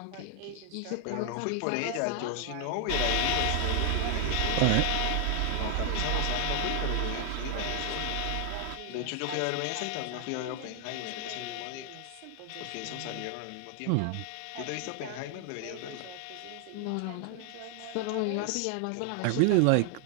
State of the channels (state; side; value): different; both; correlation 0.00